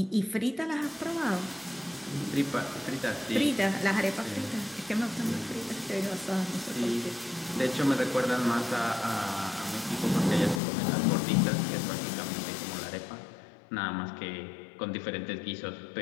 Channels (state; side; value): drops out; right; at 10.6 s